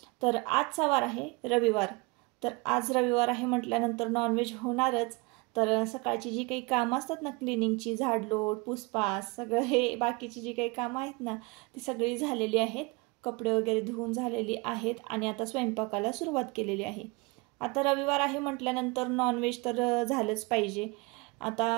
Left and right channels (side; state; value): left; quieter; 27.2 dB